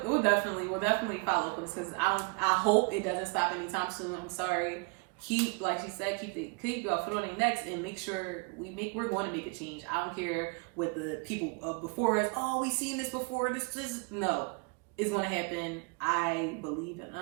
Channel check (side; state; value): left; quieter; 33.9 dB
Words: definitely follow up with this, because I hope it doesn't stop anytime soon. I'm sorry. Keep, like she said, keep your foot on their necks and make sure we're going to make a change. I don't care what the people before us. Oh, we seen this before. No, it's going to happen. I believe in